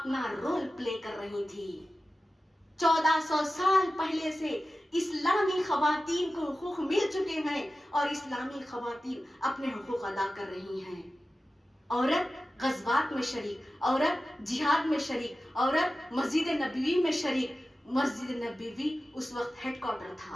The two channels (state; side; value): normal; both; correlation 0.94